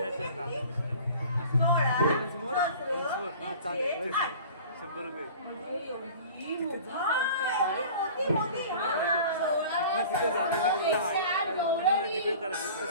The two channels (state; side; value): inverted; both; correlation -0.43